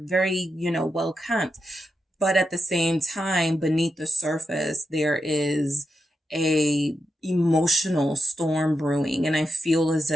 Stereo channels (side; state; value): both; normal; correlation 0.86